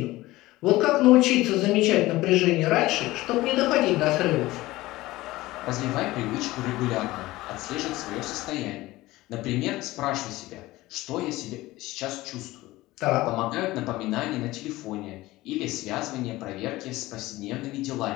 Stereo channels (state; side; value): quieter; right; 18.4 dB